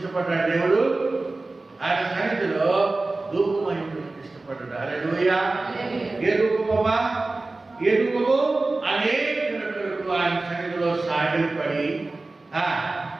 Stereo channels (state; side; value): quieter; left; 3.2 dB